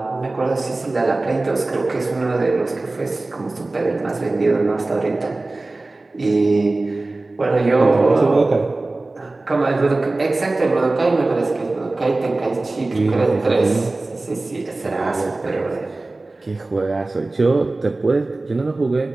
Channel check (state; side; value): quieter; left; 3.1 dB